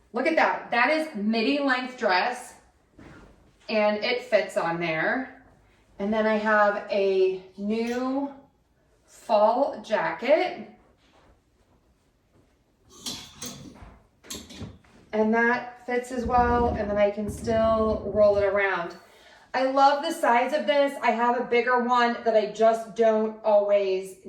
look at that. That is midi length dress and it fits on there. And then I have a new fall jacket. And that fits as well. And then I can still roll it around. I love the size of this. I have a bigger one that I just don't always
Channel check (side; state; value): both; identical; correlation 1.00